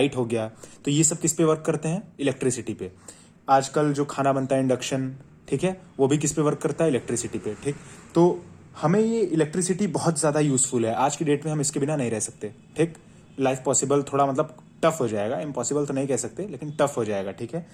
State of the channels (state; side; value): identical; both; correlation 1.00